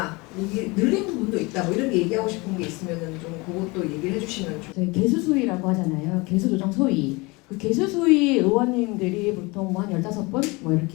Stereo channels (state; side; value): quieter; right; 25.4 dB